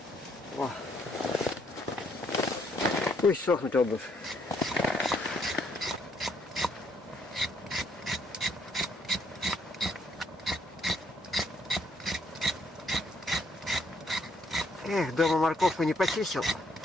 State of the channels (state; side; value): normal; both; correlation 0.70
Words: О. Пусть сохнет обувь. Эх, дома морковку не почистил.